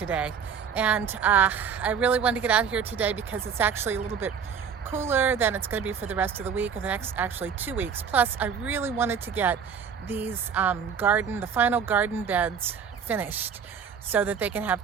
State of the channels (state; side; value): quieter; left; 7.0 dB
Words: And I really wanted to get out here today because it's actually a little bit cooler than it's going to be for the rest of the week, or the next actually 2 weeks. Plus, I really wanted to get these the final garden beds finished so that they can have